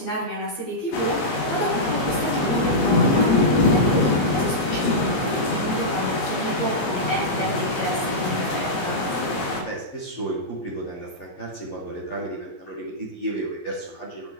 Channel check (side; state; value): right; late; 15 ms